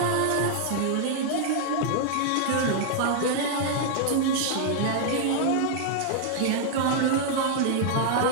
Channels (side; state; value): both; different; correlation -0.01